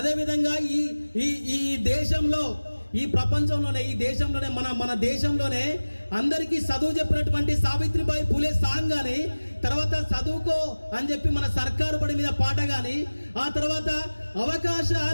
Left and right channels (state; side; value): inverted; both; correlation -1.00